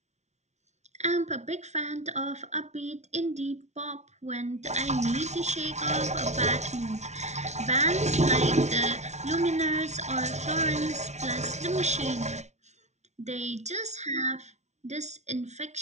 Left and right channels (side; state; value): left; late; 0.32 ms